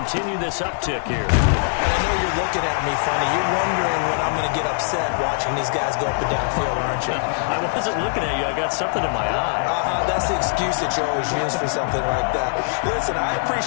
this uptick here. I know you're looking at me funny. You're wondering when I'm going to get upset watching these guys go up and down field, aren't you? I wasn't looking at you. I got something in my eye. That's the excuse that you always use for something like that. Listen, I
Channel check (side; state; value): right; silent; digital silence